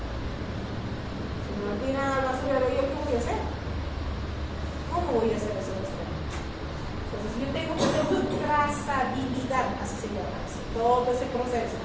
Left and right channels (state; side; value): identical; both; correlation 1.00